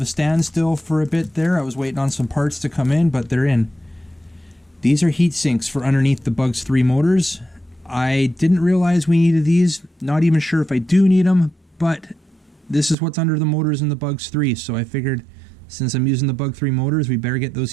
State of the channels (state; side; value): drops out; left; at 13.0 s